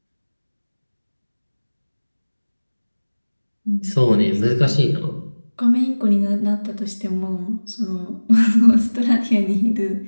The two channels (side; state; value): both; inverted; correlation -1.00